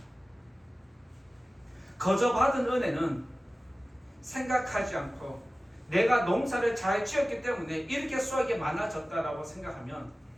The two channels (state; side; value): normal; both; correlation 0.96